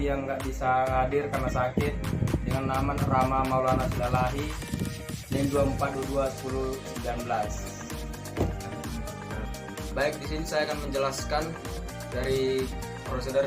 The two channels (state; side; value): identical; both; correlation 1.00